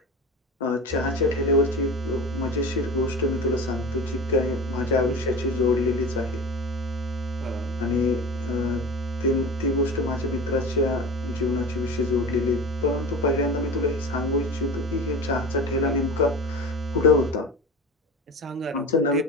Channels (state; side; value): normal; both; correlation 0.32